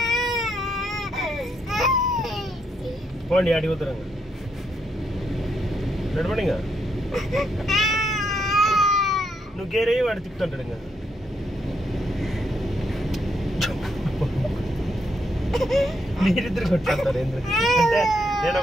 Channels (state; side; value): normal; both; correlation 0.77